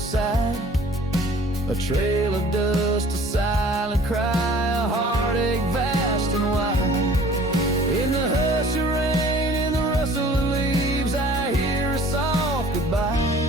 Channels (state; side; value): normal; both; correlation 0.50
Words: A trail of dust, a silent cry, a heartache vast and wide. In the hush of rain, in the rustle of leaves, I hear a soft goodbye.